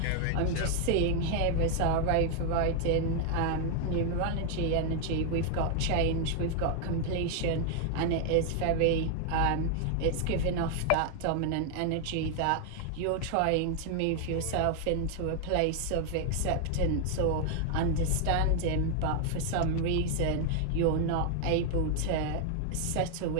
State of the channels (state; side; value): different; both; correlation 0.00